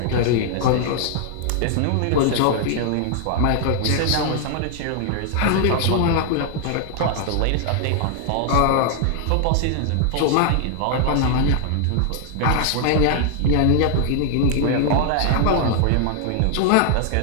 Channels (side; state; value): both; different; correlation 0.00